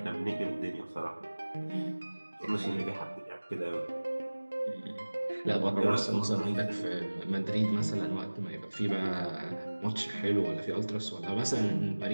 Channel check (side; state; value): both; inverted; correlation -1.00